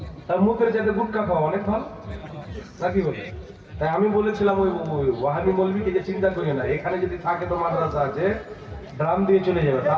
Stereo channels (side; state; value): both; identical; correlation 1.00